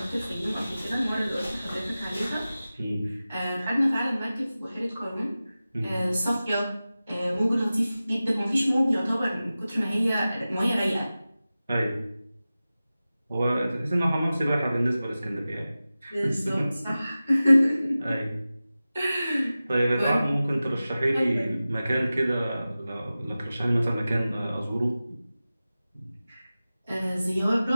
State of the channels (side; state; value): both; inverted; correlation -0.96